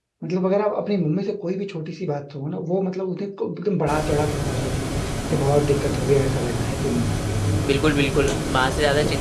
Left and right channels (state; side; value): identical; both; correlation 1.00